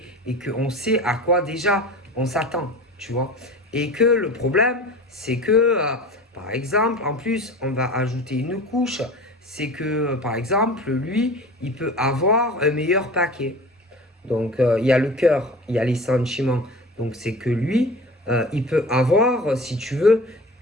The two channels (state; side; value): normal; both; correlation 0.37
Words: et qu'on sait à quoi déjà on s'attend, tu vois. Et que le problème, c'est que, par exemple, en plus, on va ajouter une couche, c'est que, par exemple, lui, il peut avoir un meilleur paquet. Donc, il y a le cœur, il y a les sentiments. Donc, c'est que lui, il peut avoir, si tu veux,